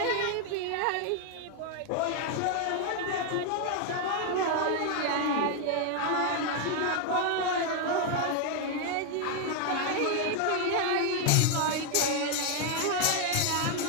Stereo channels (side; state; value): both; different; correlation 0.00